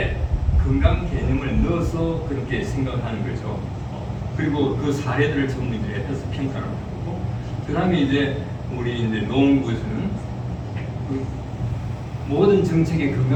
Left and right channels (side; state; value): both; identical; correlation 1.00